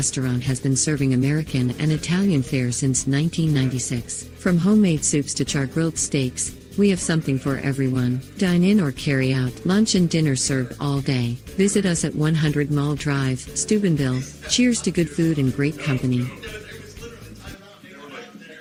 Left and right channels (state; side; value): identical; both; correlation 1.00